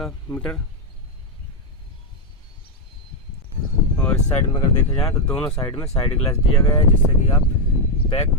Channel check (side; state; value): both; normal; correlation 0.02